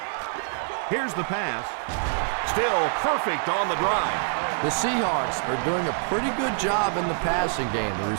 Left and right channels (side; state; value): left; silent; 61 dB below the other